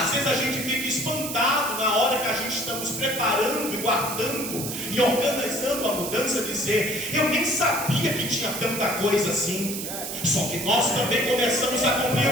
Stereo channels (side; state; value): right; noise; hiss, 6 dB below the sound